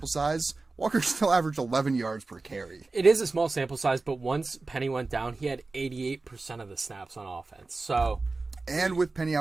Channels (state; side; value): quieter; left; 3.6 dB